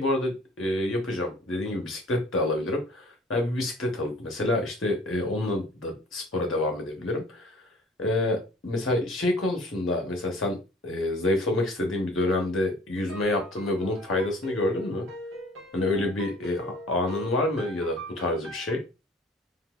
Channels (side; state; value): both; normal; correlation 0.51